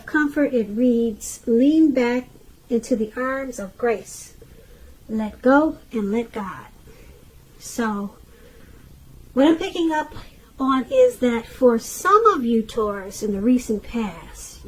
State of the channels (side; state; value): both; identical; correlation 1.00